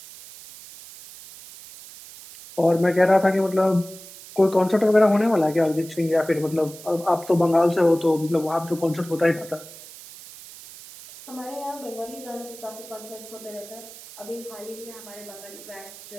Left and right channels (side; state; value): right; noise; hiss, 17 dB below the sound